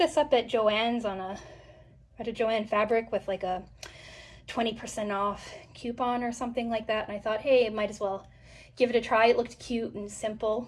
up at Joann's at a Joann fabric with like a 20% off coupon or something like that, and I thought, hey, I might as well give it a try. It looked cute and simple.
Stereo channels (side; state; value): both; identical; correlation 1.00